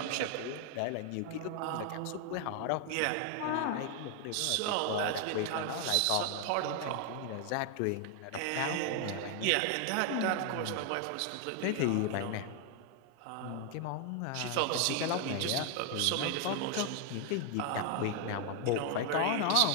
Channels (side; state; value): both; different; correlation 0.00